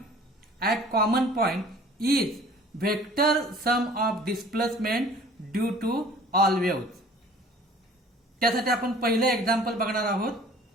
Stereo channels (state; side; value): normal; both; correlation 0.49